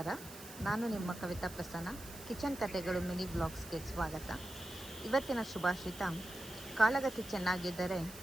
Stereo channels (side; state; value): right; noise; hiss, 15 dB below the sound